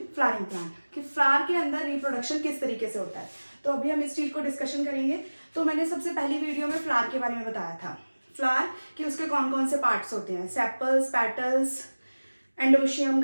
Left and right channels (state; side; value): inverted; both; correlation -1.00